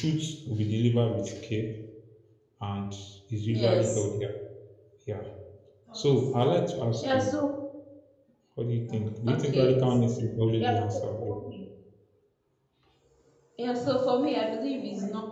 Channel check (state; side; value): identical; both; correlation 1.00